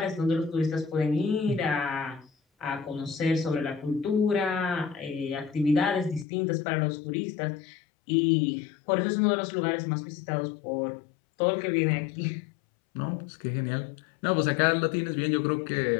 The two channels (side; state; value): right; drops out; at 6.2 s